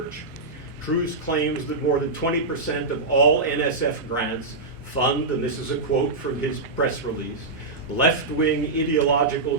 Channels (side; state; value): left; quieter; 3.4 dB